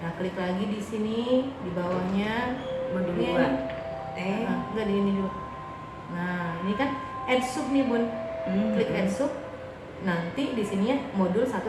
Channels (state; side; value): identical; both; correlation 1.00